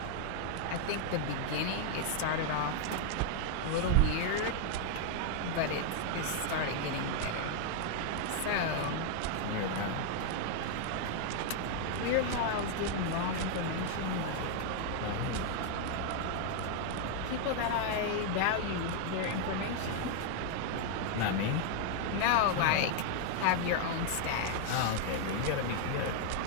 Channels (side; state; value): both; different; correlation 0.00